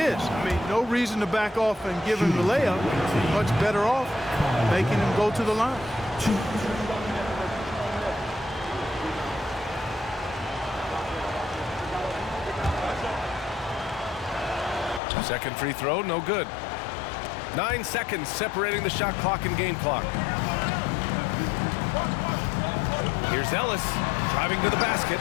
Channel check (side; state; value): right; drops out; at 15.0 s